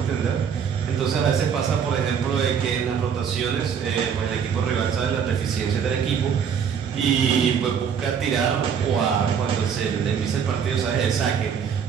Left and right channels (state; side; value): quieter; left; 7.3 dB